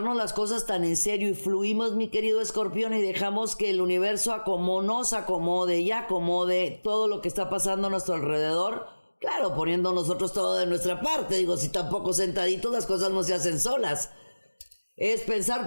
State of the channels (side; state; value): both; inverted; correlation -1.00